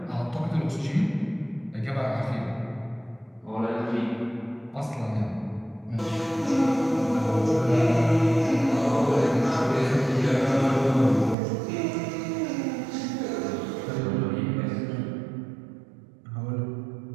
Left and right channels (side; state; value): left; drops out; at 11.4 s